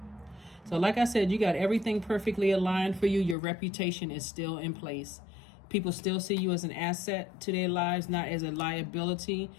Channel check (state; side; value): drops out; right; at 3.4 s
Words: So like I said, you got everything perfectly aligned for you. Your reputation is still in place. People still see you as an asset to their lives, not as a liability.